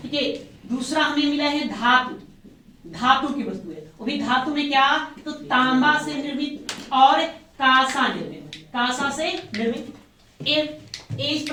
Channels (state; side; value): identical; both; correlation 1.00